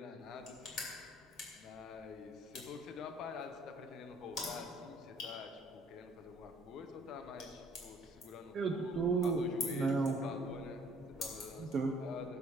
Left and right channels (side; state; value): both; normal; correlation 0.59